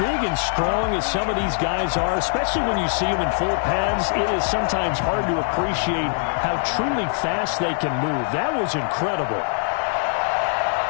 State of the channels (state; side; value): silent; right; 64 dB below the other